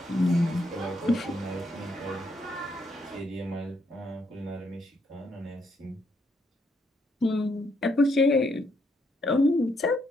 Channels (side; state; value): both; normal; correlation 0.75